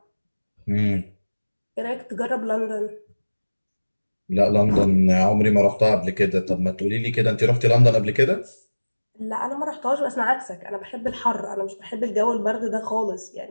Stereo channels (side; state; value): both; inverted; correlation -1.00